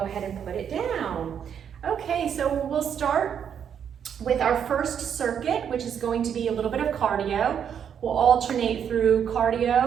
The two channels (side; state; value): left; quieter; 8.2 dB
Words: ahead and put it down. Okay, so we'll start with our first circuit, which is going to be a little bit of cardio. We'll alternate through